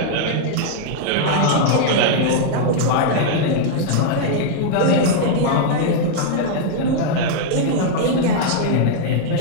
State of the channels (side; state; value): both; different; correlation -0.01